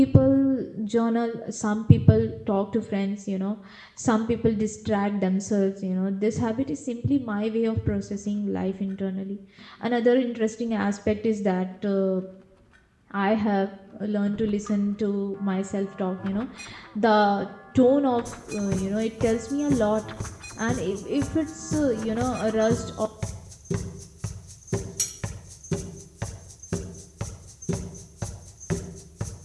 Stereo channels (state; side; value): identical; both; correlation 1.00